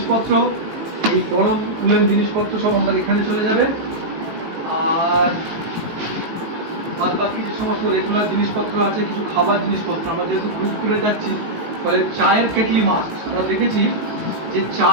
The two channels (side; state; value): left; late; 18 ms